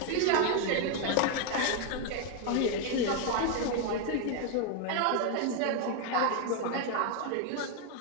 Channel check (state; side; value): different; both; correlation 0.01